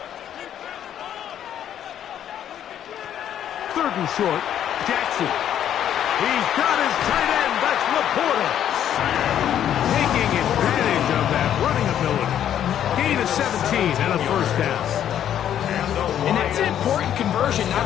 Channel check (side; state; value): right; quieter; 10.3 dB